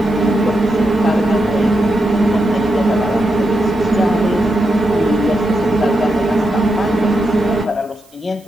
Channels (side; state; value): right; noise; hiss, 30 dB below the sound